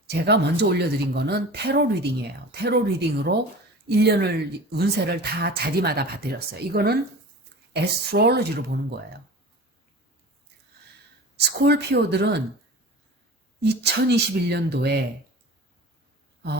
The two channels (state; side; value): normal; both; correlation 0.36